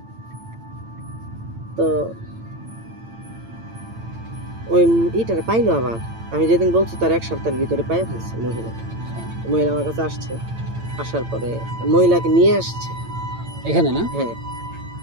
তো ওই ইটারে পাইলো আবার, আমি যেদিন বলছি তার 1 সপ্তাহের ভিতরে পাই ফেলছে মহিলা আমার কাছে আসছে। আসার পরে মহিলাকে নিয়ে আসছে এখানে না? হ্যাঁ,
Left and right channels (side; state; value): left; late; 8.9 ms